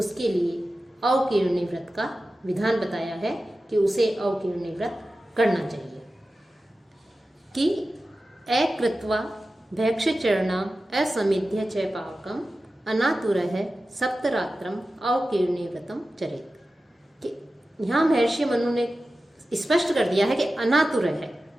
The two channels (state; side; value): normal; both; correlation 0.94